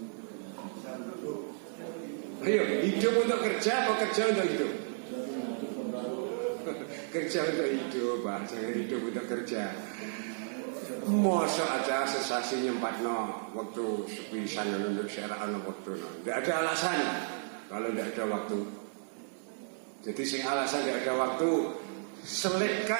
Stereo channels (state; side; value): silent; left; 56 dB below the other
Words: Ayo, hidup untuk kerja apa kerja untuk hidup? Kerja untuk hidup, Pak. Jangan hidup untuk kerja. Masa aja sesasi nyempatno waktu sepisan untuk syara'an waktu. Tidak ada alasan kalau tidak ada waktu. Jadi sing alasan tidak ada waktu,